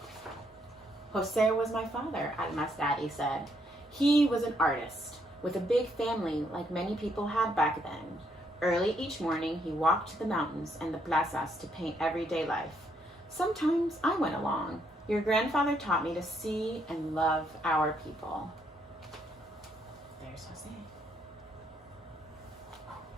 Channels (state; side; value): normal; both; correlation 0.73